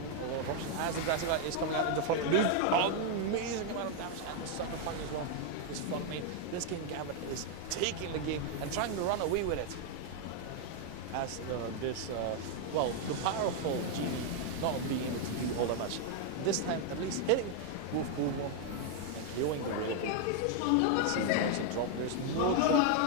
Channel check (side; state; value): both; different; correlation 0.00